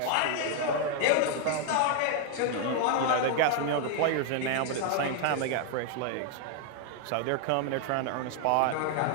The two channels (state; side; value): different; both; correlation 0.00